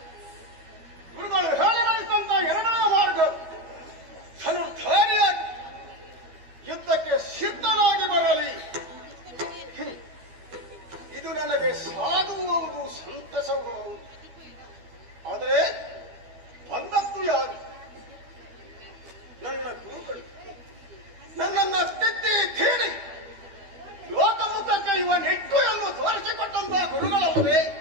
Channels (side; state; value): left; late; 12 ms